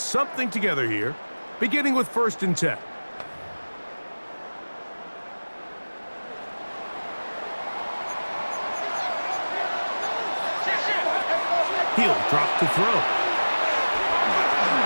together here, beginning with 1st and 10. He'll drop to throw.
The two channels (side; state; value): both; inverted; correlation -1.00